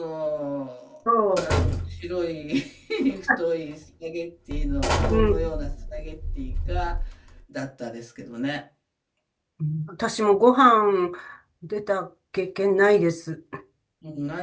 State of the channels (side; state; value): both; identical; correlation 1.00